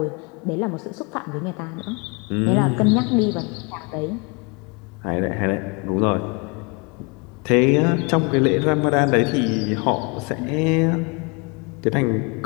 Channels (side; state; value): right; quieter; 30.9 dB